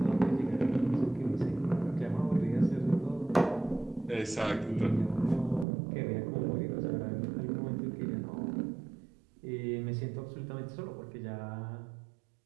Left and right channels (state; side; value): drops out; left; at 5.7 s